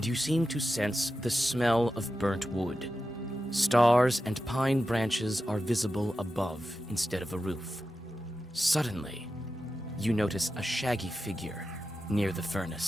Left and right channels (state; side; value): normal; both; correlation 0.91